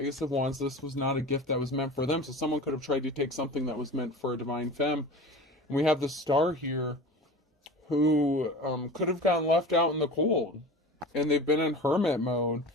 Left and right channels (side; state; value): both; normal; correlation 0.35